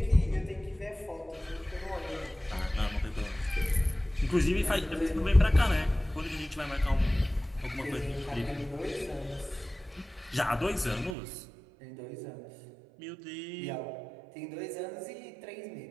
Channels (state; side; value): drops out; left; at 11.2 s